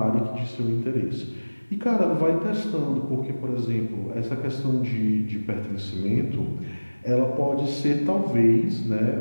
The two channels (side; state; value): both; inverted; correlation -1.00